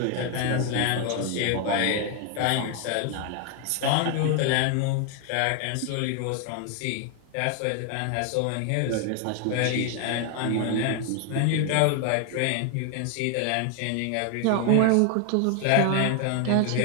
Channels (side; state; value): both; different; correlation 0.00